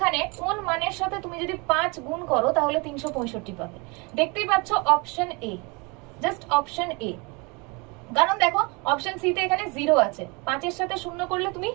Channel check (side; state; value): left; quieter; 29.0 dB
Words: কোন মানের সাথে তুমি যদি 5 গুণ করো তাহলে 365 পাবে। দেখতেই পাচ্ছ option A, just option A. কারণ দেখো অপশন সি তে এখানে 0 আছে, 5 এর সাথে 0 করলে তুমি